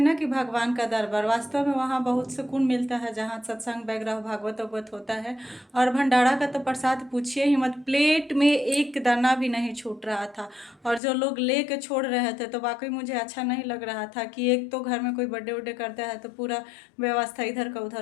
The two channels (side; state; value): right; drops out; at 11.0 s